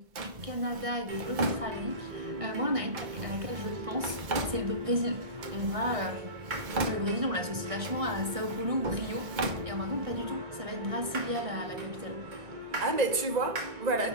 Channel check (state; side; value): late; left; 1.6 ms